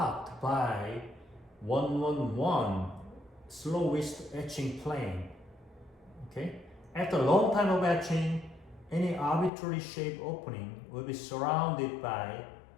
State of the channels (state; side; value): drops out; right; at 9.5 s